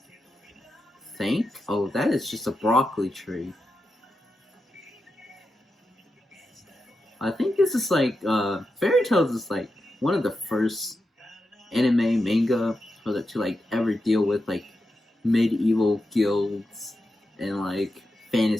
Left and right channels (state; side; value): normal; both; correlation 0.88